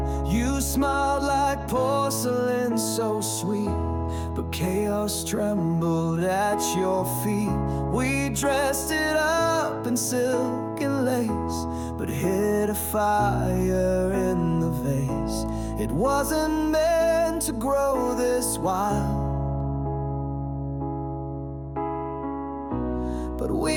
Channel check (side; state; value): both; identical; correlation 1.00